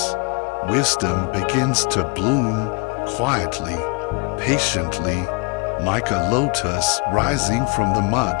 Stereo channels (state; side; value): quieter; right; 32.3 dB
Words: wisdom begins to bloom quietly, patiently, like a lotus rising from the mud.